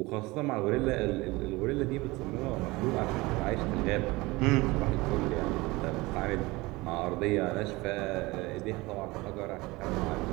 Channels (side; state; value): left; quieter; 22.1 dB